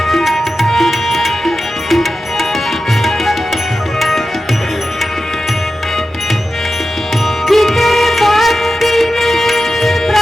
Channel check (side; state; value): both; normal; correlation 0.92